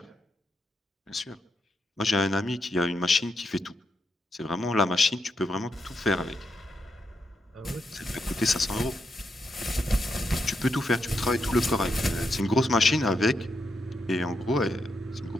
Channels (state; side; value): normal; both; correlation 0.82